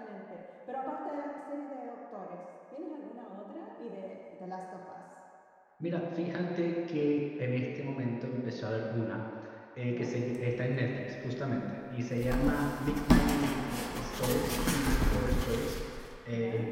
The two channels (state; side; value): identical; both; correlation 1.00